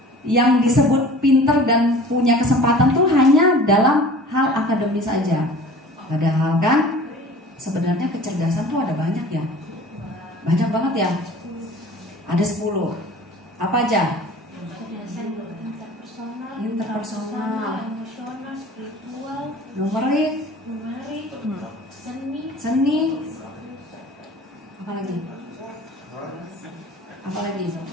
yang disebut pintar dan punya kesempatan tuh hanya dalam hal akademis saja. Padahal kan sebenarnya kecerdasan tuh ada banyak ya. Banyak banget ya. Ada 10. Apa aja? Interpersonal, emosional, spiritual, numerik, seni, apa lagi?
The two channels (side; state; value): both; normal; correlation 0.44